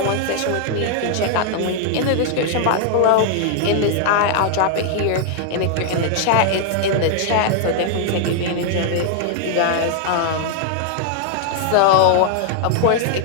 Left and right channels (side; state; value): both; different; correlation -0.01